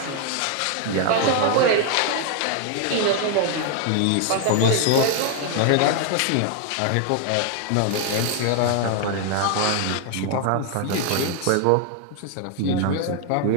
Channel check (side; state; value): both; different; correlation 0.00